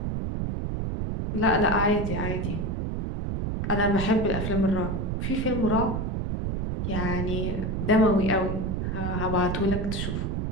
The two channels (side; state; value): right; noise; rumble, 2 dB below the sound